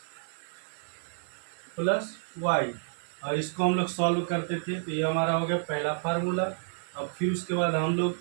plus y, और इसको हम लोग सॉल्व करते थे। तो ये हमारा हो गया पहला फार्मूला। अब फिर उसके बाद हम लोग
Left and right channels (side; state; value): left; silent; 58 dB below the other